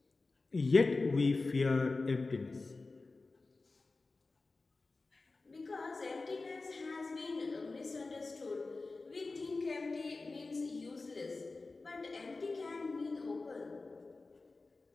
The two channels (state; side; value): quieter; right; 3.6 dB